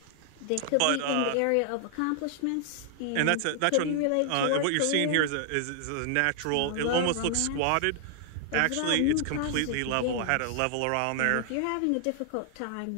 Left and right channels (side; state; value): both; different; correlation 0.00